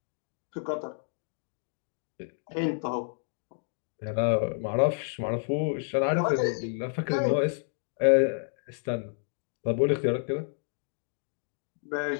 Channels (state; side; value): silent; right; digital silence